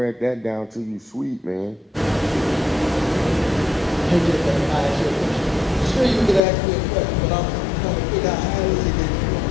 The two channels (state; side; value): drops out; right; at 6.4 s